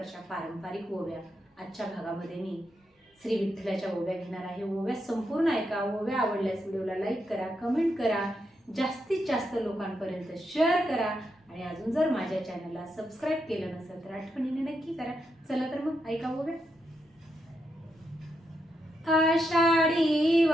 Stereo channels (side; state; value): both; normal; correlation 0.83